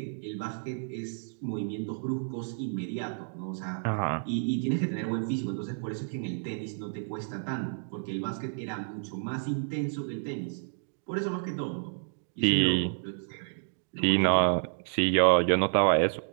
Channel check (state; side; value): silent; left; digital silence